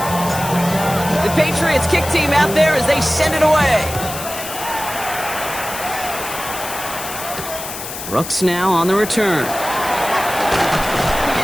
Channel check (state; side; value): noise; left; hiss, 9 dB below the sound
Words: The Patriots kick team out there as they send it away. Brooks now on the return.